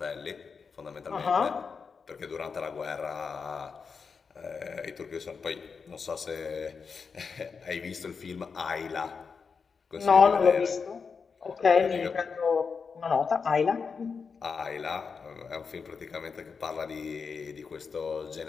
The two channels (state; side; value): quieter; right; 5.5 dB